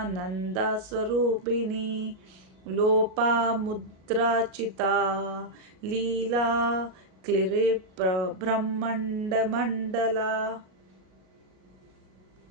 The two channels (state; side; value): late; left; 38 ms